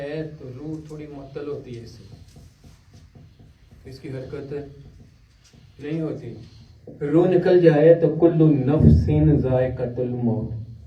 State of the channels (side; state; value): both; identical; correlation 1.00